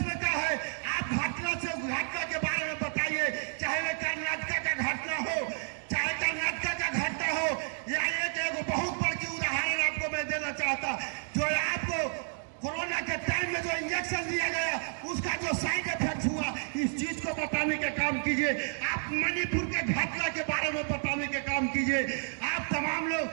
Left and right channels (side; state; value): left; silent; 57 dB below the other